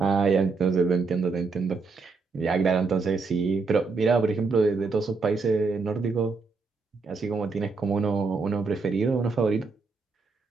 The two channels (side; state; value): left; quieter; 4.4 dB